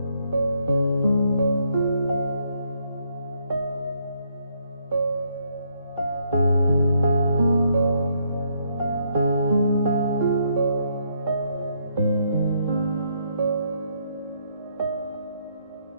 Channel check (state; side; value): inverted; both; correlation -0.73